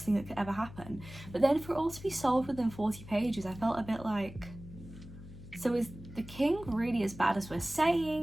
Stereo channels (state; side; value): noise; left; hum, 16 dB below the sound